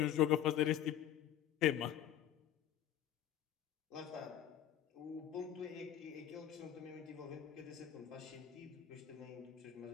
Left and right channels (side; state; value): right; quieter; 10.8 dB